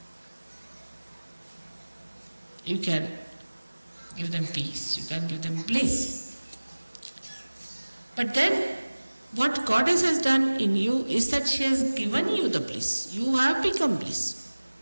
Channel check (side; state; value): both; inverted; correlation -1.00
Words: You can give them peace. You can give them bliss. But then what Goddess has done in you is that she has given you the bliss. You have become bliss.